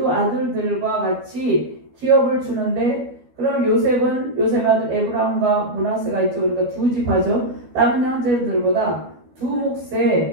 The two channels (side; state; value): left; late; 12 ms